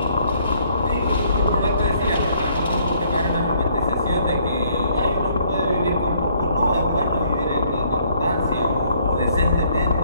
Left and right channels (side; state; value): both; inverted; correlation -0.64